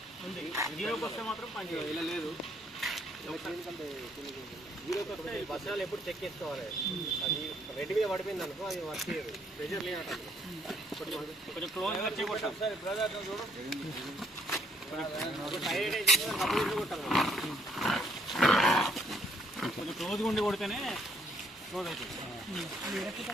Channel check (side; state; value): both; normal; correlation 0.68